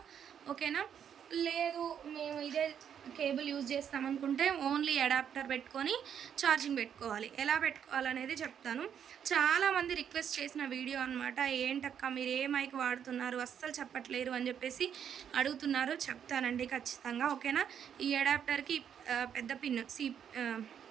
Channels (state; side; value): quieter; left; 8.5 dB